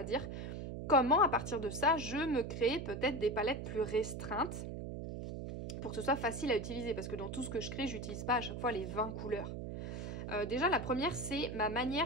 dire. Comment à partir de ça, je me crée peut-être des palettes plus restreintes pour que ce soit facile à utiliser, parce que dans tout ce que je crée, j'utilise pas à chaque fois les 20 couleurs. Déjà, la première, c'est ma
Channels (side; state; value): right; noise; hum, 6 dB below the sound